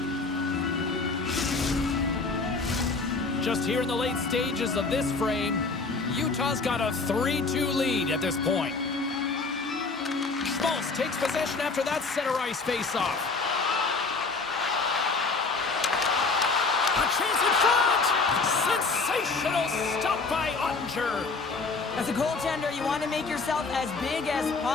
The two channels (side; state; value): right; quieter; 4.1 dB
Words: Just here in the late stages of this frame, Utah's got a 3-2 lead at this point. Schmaltz takes possession after that center ice face-off. A chance in front! Sensational stop by Ottinger. As a goaltender, you want to make yourself as big as